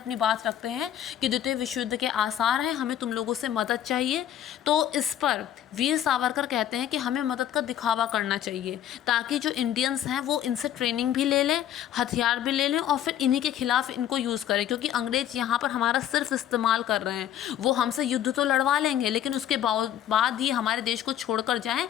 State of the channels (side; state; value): right; quieter; 10.9 dB